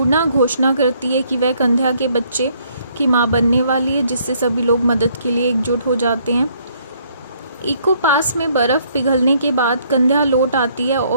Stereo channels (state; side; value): inverted; both; correlation -0.66